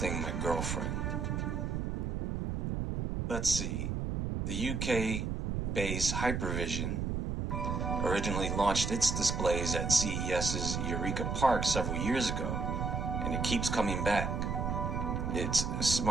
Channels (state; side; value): noise; right; rumble, 1 dB below the sound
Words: my girlfriend? Let's see. The UK-based Hypervision originally launched its displays at CES's Eureka Park several years ago, and it keeps coming back. Its